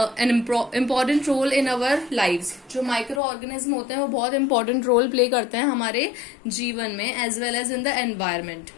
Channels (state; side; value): drops out; right; at 3.2 s